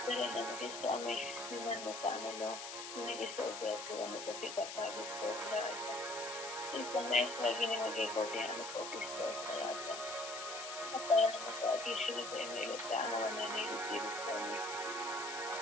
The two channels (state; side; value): noise; left; hiss, 8 dB below the sound